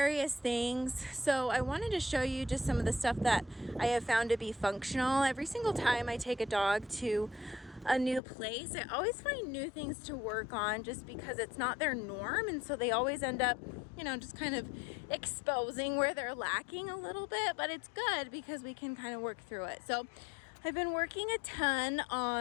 things. So I wanted to show you just some of the stuff that I have found to be functional. Every single time I take a dog to a new place, I always find new things to work on just because it's not their norm, and so they always end up, just kind of exposing where they're lacking a little bit, but it's good because we can kind of work through it. So I've been working a ton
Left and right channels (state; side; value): drops out; right; at 8.2 s